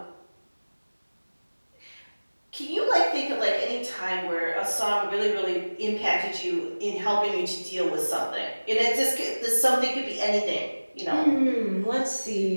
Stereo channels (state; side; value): inverted; both; correlation -1.00